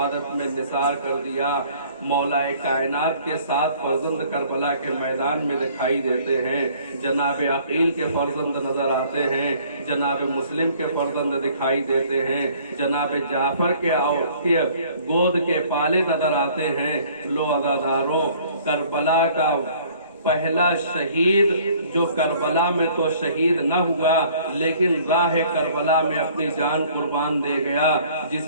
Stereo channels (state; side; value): inverted; both; correlation -0.55